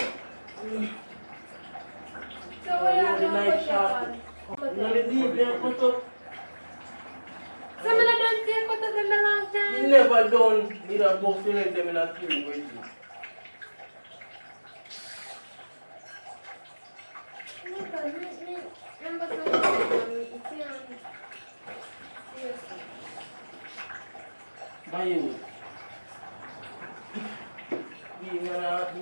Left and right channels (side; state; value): both; inverted; correlation -1.00